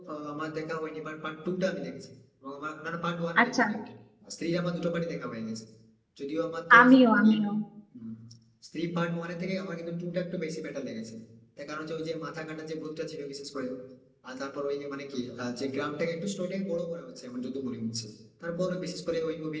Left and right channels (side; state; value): both; identical; correlation 1.00